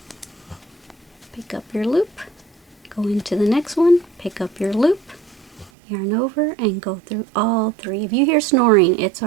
Pick up your loop, go into the next one, pick up your loop, yarn over, and go through all 3. If you hear snoring, it's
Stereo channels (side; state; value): left; drops out; at 5.7 s